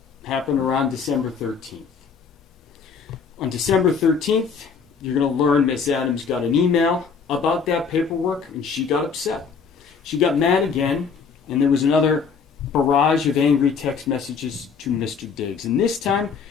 happened around December 13th. On December 13th, you're going to learn Miss Adams got an email about that paperwork, and she got upset. She got mad again, and there was another barrage of angry text messages to Mr. Diggs. And this time,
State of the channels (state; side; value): quieter; right; 5.8 dB